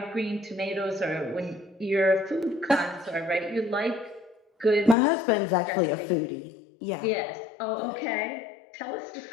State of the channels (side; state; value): right; drops out; at 5.0 s